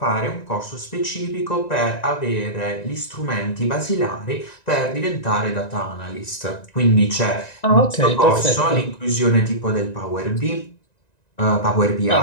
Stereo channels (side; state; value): right; late; 1.9 ms